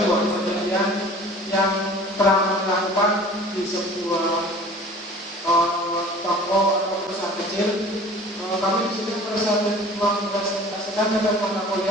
penelitian yang pernah dilakukan di sebuah toko atau perusahaan kecil. Kami di sini mempresentasikan tentang mata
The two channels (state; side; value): normal; both; correlation 0.45